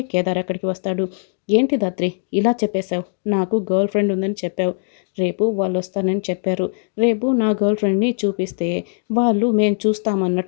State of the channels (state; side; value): silent; right; digital silence